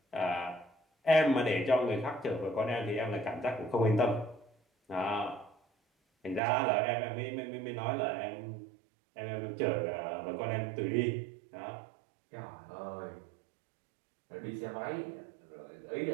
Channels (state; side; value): drops out; left; at 6.4 s